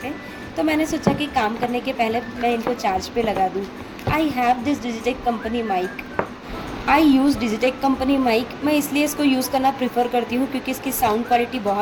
थे। तो मैंने सोचा कि काम करने के पहले मैं इनको चार्ज पे लगा दूँ। I have this Digitek company mic. I use Digitek company mic. मैं इसलिए इसको यूज़ करना प्रीफर करती हूँ क्योंकि इसकी साउंड क्वालिटी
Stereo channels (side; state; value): both; identical; correlation 1.00